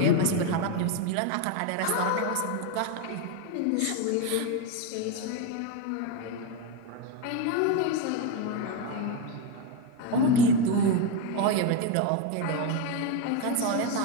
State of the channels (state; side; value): different; both; correlation 0.03